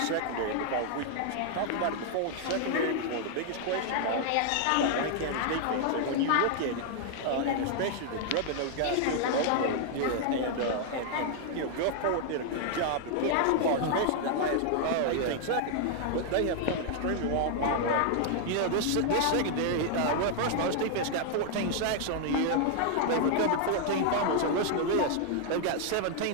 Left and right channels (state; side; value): different; both; correlation 0.00